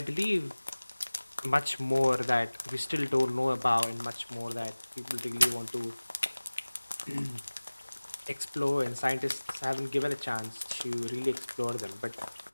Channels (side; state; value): both; inverted; correlation -1.00